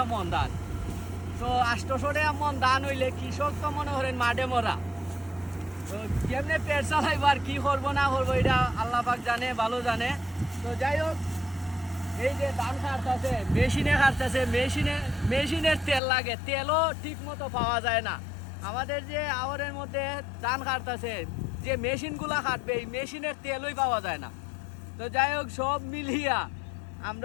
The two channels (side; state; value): right; drops out; at 16.0 s